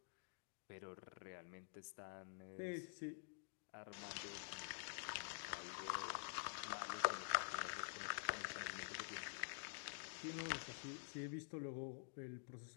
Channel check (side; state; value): right; silent; digital silence